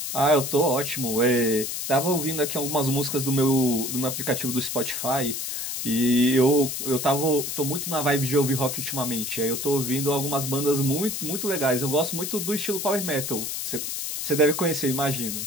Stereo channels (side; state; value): left; noise; hiss, 4 dB below the sound